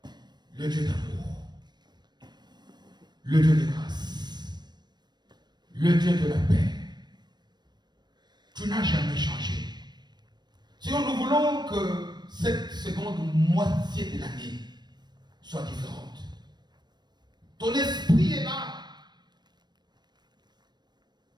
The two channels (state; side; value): late; left; 0.21 ms